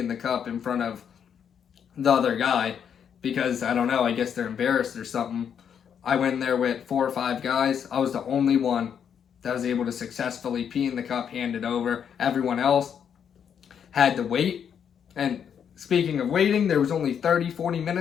the cup in front of the other guy because, I don't know, I guess they're embarrassed or something. I went in there with 4 or 5 guys. I was the only one that was able to successfully pee in the cup, hand it over. Everyone else had to wait. And speaking of waiting, there was only 30-40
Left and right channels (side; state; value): right; quieter; 8.0 dB